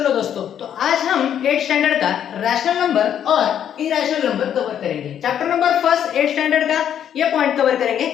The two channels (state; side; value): quieter; right; 9.5 dB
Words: दोस्तों, तो आज हम 8 स्टैंडर्ड का रैशनल नंबर और इरेशनल नंबर कवर करेंगे। चैप्टर नंबर फर्स्ट 8 स्टैंडर्ड का ये पॉइंट कवर करेंगे,